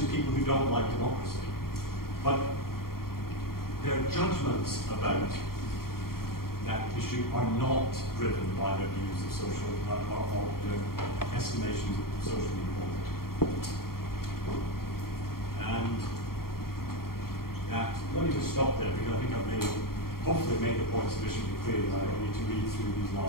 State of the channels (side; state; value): right; late; 0.93 ms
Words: people who don't like democracy. But their judgments about that issue are not driven by their views of social, or their estimations of social equality. And that, let me just stop there, because I think I've hopefully made the point sufficiently clear that I don't need to read through these